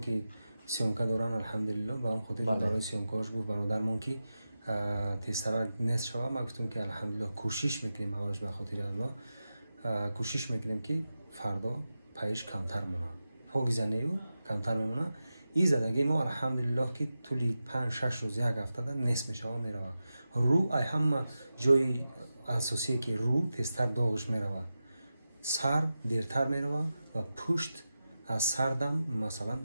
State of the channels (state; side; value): inverted; both; correlation -0.92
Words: سیامکه دارن الحمدلله با هم خودی برای سیامکهاش گفت برادرمون که تیسرا نصف شود ما گفتم که الحمدلله کوشش میکنیم اولش به خاطر الله کوشش میکنیم که فردا پیش کمتر مونه پاگیزنیو کمتر میمونه. این زدگی ما الحمدلله که طولی 5-6 روز یک هفته نصف میشه میروه. رو ای همه جای اساسی که رو تیزتر داغش میروه. سر دیرتر میروه و پشت از سردم مثلا